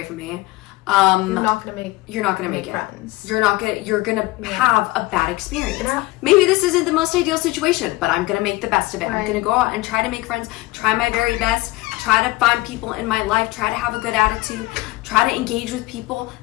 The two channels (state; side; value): quieter; right; 20.4 dB